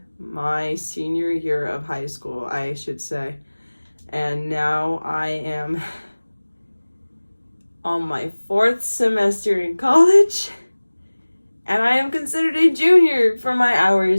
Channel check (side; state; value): both; inverted; correlation -1.00